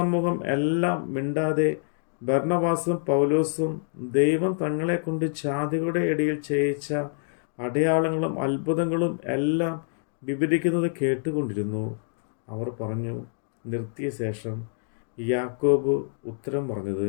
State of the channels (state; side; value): silent; right; digital silence